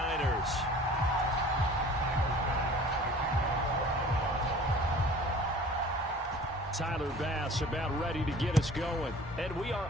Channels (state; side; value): normal; both; correlation 0.46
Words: Tyler Bass about ready to get us going. And we are